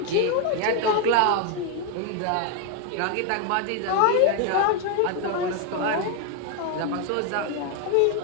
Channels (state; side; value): different; both; correlation 0.01